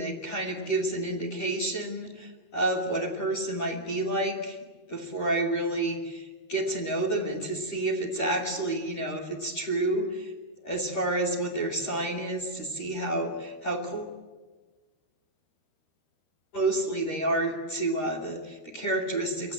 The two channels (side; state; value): right; late; 13 ms